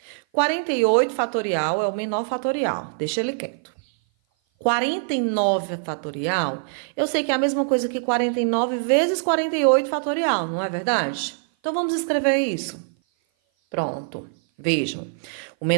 48 fatorial é o menor fatorial. Deixa ele quieto. 49 fatorial, eu sei que é a mesma coisa que 49 vezes 48 fatorial, não é verdade? Então, vamos escrever isso. Pronto. Vejam. O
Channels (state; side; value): silent; left; 56 dB below the other